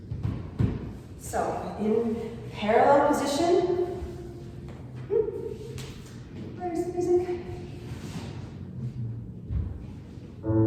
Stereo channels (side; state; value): both; identical; correlation 1.00